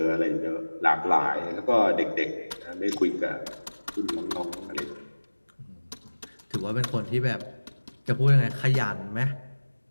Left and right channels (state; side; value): inverted; both; correlation -1.00